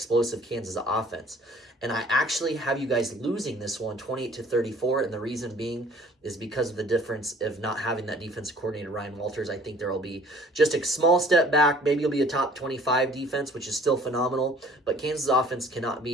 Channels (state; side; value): normal; both; correlation 0.53